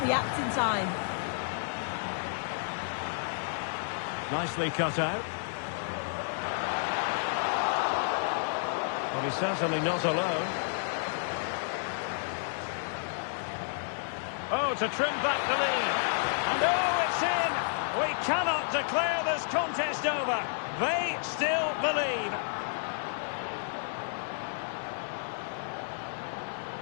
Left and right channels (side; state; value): right; silent; 57 dB below the other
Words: react in time. Nicely cut out. Well, he's certainly not alone. Oh, to trim back the lead. And oh, it's in! We cannot declare this contest over. They still believe.